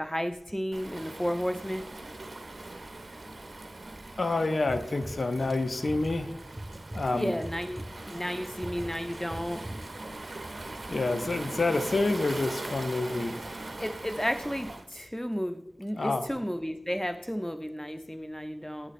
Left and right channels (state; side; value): normal; both; correlation 0.96